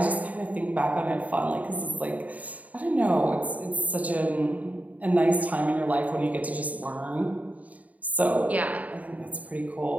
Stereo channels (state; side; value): late; left; 0.072 ms